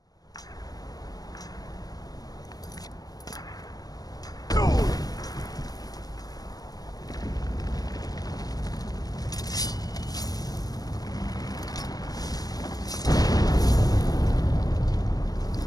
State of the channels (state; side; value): late; right; 0.18 ms